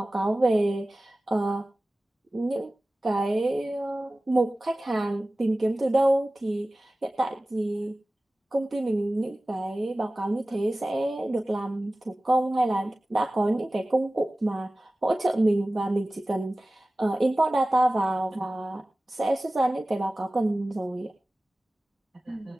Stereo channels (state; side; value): normal; both; correlation 0.97